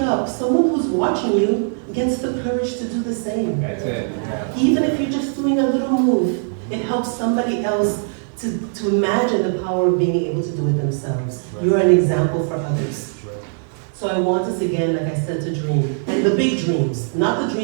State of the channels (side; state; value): left; silent; digital silence